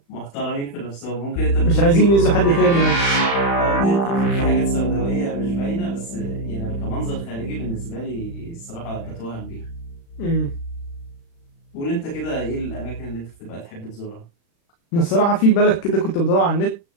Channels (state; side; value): late; right; 36 ms